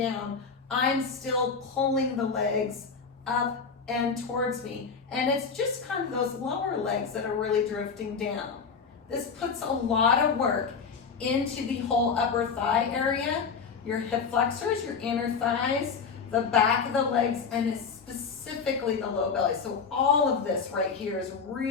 I'm still pulling the legs up and towards me. And it's just kind of those lower legs that are really drifting down. This puts a lot of work into the whole upper thigh area, your hip flexors, your inner thighs, the back of the legs, and specifically the low belly. So all of this right here is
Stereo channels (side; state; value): right; quieter; 5.6 dB